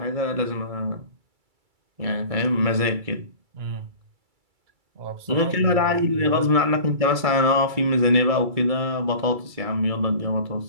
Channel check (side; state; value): left; late; 2.3 ms